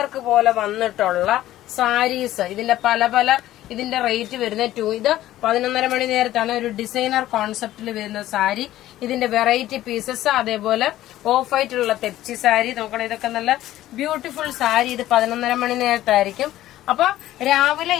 പോലെ വന്നിട്ടുള്ള സാരീസ്. ഇതിന്റെ പല ഇതിന്റെ റേറ്റ് വരുന്നത് ഇത് 11:30 മണി നേരത്താണ് ഒരു ഡിസൈനർ കോൺസെപ്റ്റിൽ വരുന്ന സാരി. ഇതിന്റെ വെറൈറ്റി പീസസ്, അതേപോലെ ഓഫ് വൈറ്റുള്ള തെപ്ചി സാരി നോക്കണം. ഇതൊക്കെ നല്ല ബ്യൂട്ടിഫുൾ സാരി. ഇത് 11:30 മണി നേരത്തായിരിക്കും. അപ്പൊ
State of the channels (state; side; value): quieter; right; 14.3 dB